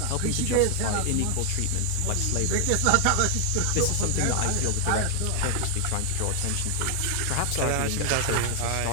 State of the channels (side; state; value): both; different; correlation 0.00